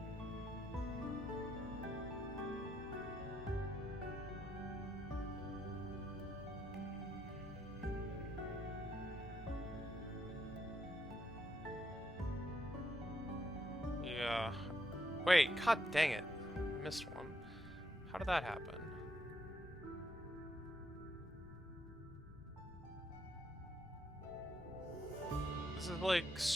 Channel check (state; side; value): normal; both; correlation 0.77